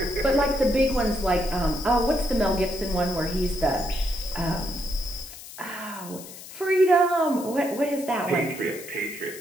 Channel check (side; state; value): left; noise; hiss, 15 dB below the sound